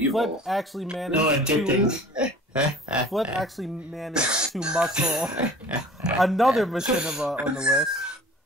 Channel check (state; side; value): normal; both; correlation 0.45